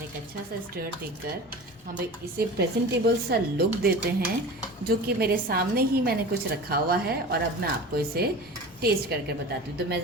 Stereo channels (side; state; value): both; normal; correlation 0.35